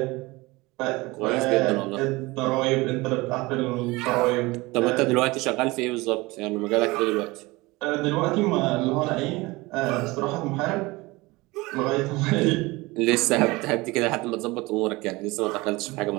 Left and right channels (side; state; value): left; quieter; 22.3 dB